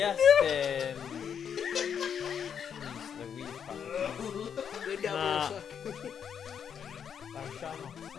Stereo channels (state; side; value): quieter; right; 7.8 dB